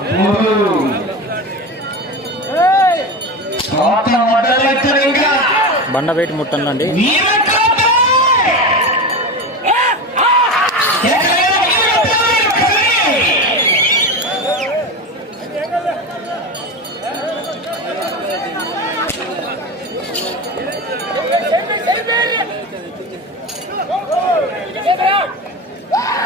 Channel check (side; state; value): both; normal; correlation 0.23